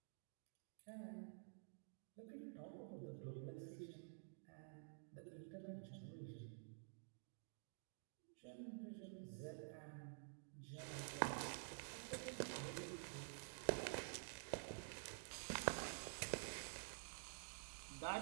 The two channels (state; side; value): silent; left; digital silence